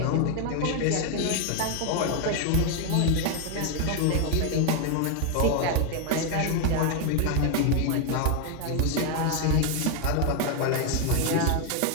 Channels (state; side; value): different; both; correlation 0.01